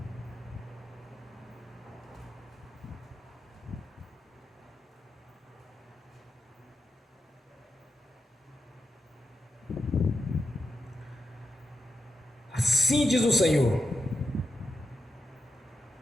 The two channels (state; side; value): normal; both; correlation 0.87